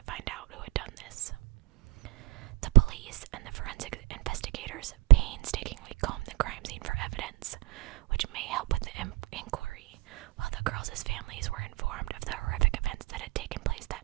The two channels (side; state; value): left; quieter; 19.5 dB